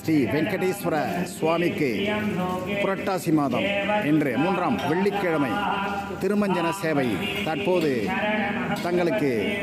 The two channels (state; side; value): identical; both; correlation 1.00